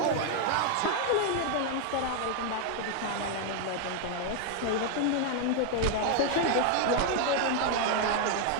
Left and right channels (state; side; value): different; both; correlation 0.00